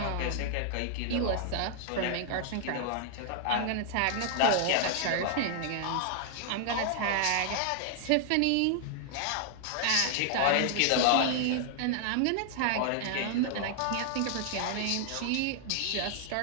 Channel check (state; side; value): different; both; correlation 0.00